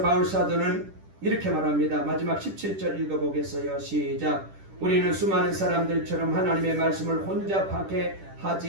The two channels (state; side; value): late; left; 10 ms